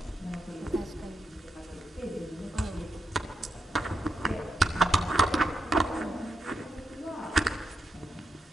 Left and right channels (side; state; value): both; normal; correlation 0.86